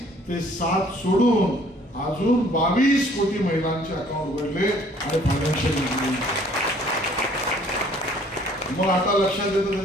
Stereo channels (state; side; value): normal; both; correlation 0.58